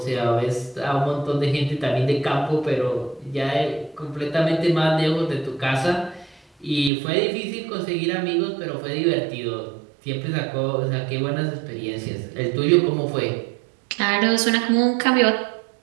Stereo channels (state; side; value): drops out; left; at 6.9 s